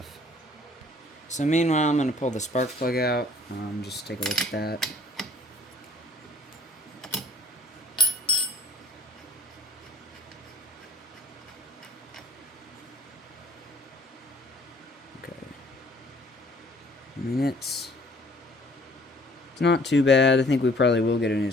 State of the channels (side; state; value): both; normal; correlation 0.55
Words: So meanwhile, I'm going to pull the spark plug out. Just take a look at that. Okay. I mean, it's not too bad. I think we probably will get a new